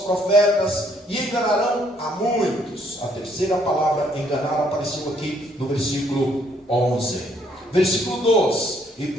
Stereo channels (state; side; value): normal; both; correlation 0.67